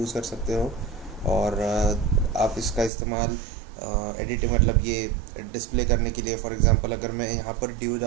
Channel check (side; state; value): left; drops out; at 2.9 s